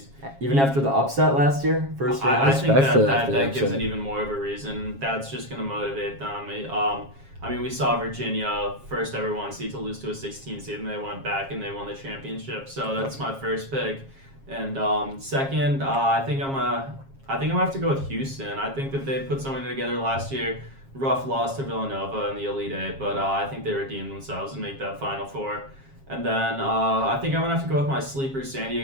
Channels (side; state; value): left; late; 7.4 ms